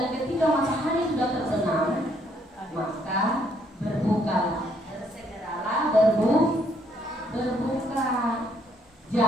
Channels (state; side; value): normal; both; correlation 0.69